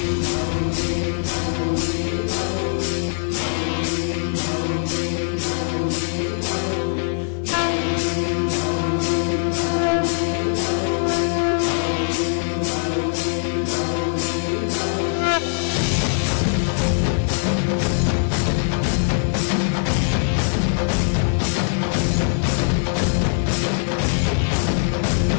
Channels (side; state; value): right; silent; digital silence